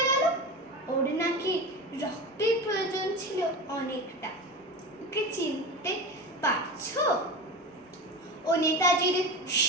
গেল। ওর নাকি রক্তের প্রয়োজন ছিল অনেকটা। ওকে চিনতে পারছো? ও নেতাজির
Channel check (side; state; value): both; normal; correlation 0.27